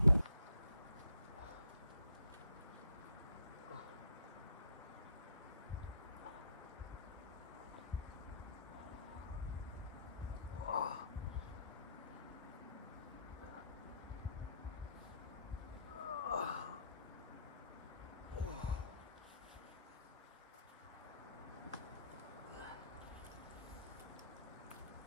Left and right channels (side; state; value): both; inverted; correlation -0.65